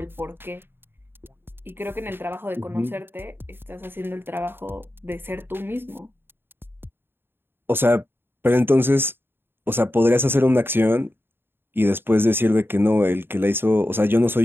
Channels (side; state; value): left; late; 0.10 ms